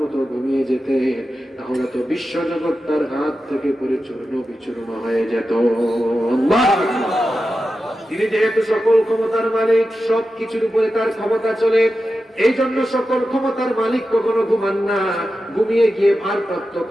মতো ঘুমিয়ে যেতে, তাহলে তো বিশ্বজগৎ তার হাত থেকে পড়ে চূর্ণ বিচূর্ণ হয়ে যেত। তিনি যেহেতু সকল ক্ষমতার মালিক, সব কিছুর উপরে তার ক্ষমতা চলে, এই জন্য সকল ক্ষমতার মালিক কখনো ঘুমান না। ঘুমিয়ে গিয়ে ভারপ্রাপ্ত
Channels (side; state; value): both; normal; correlation 0.91